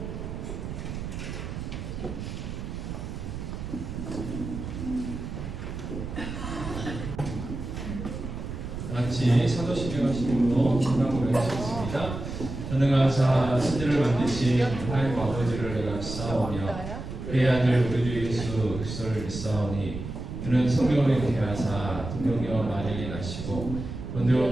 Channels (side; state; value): right; noise; rumble, 7 dB below the sound